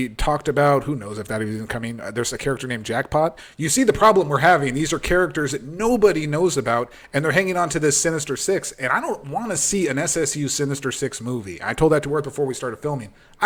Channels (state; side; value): identical; both; correlation 1.00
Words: talked about. Who knows if that is even coming. There's a character named Jackpot. You see the problem we're having. These are characters that nobody knows about, and they're hanging on to this Sinister Six. And I don't want to see an SSU Sinister Six movie. I told that to Worth before we started filming. I